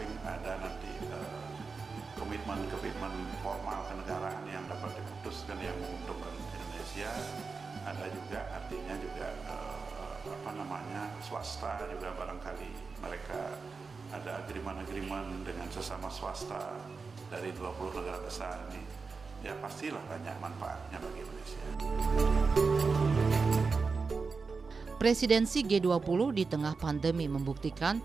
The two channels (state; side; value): quieter; left; 4.6 dB